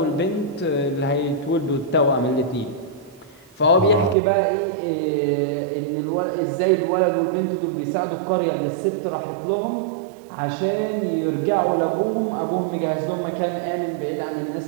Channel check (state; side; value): drops out; left; at 4.2 s